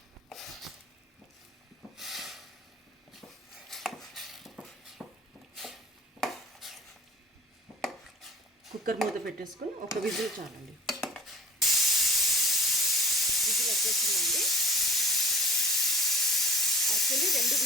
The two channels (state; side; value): normal; both; correlation 0.44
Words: కుక్కర్ మూత పెట్టేసుకొని ఒక విజిల్ చాలండి. విజిల్ వచ్చేసిందండి. యాక్చువల్లీ 2